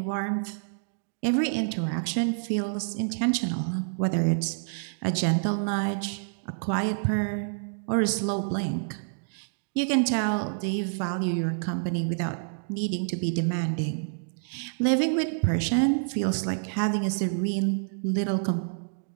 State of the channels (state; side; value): silent; left; digital silence